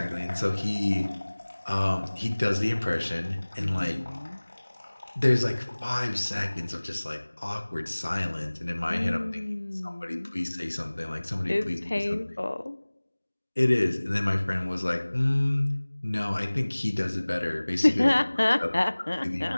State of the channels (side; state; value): both; inverted; correlation -1.00